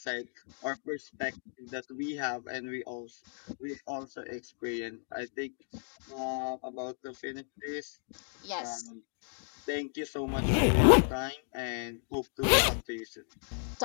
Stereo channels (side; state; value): right; silent; 55 dB below the other